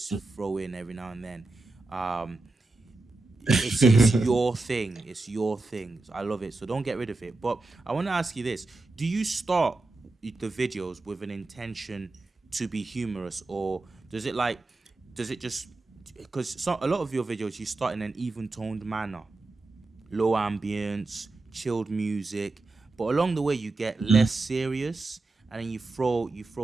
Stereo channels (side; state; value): left; quieter; 3.3 dB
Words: throw in every now and then. It's your thing. It's your thing. I love it. So don't get rid of it. But I want to ask you this: do you start the videos with an intention to be humorous, or does it just because a lot of your videos you start in an even toned manner, low ambience, chilled music, but along the way you get less serious, and then you throw